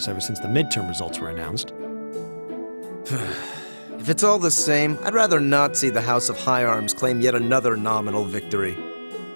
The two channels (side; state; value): both; inverted; correlation -1.00